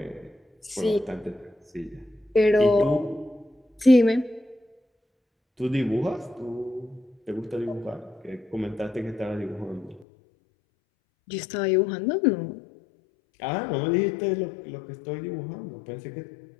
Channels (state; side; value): drops out; right; at 10.1 s